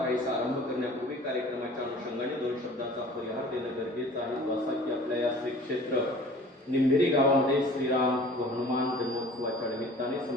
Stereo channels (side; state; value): both; normal; correlation 0.46